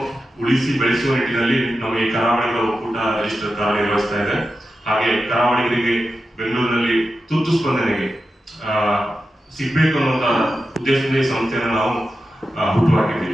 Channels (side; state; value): both; normal; correlation 0.90